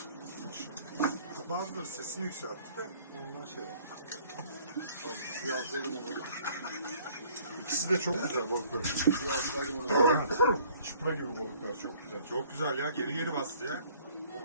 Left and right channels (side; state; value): both; inverted; correlation -0.56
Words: Bazıları sesini yükseltti de ondan şey yaptı. Abi suyu alsaydım onu. İkisi de çok güzel balıklar. Suyu alsaydım onu. Çipra gibi balıklar çok güzel. Çok güzel ya. Geri bastı ya.